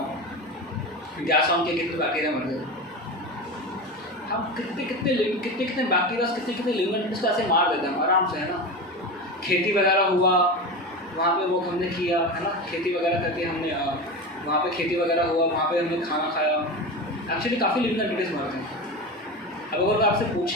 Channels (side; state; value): both; normal; correlation 0.25